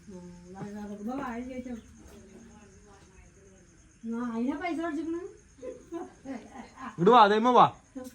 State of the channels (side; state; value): both; identical; correlation 1.00